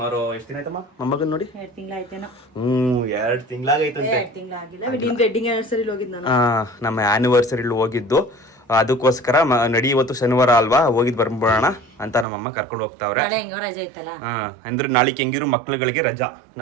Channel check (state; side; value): drops out; left; at 12.2 s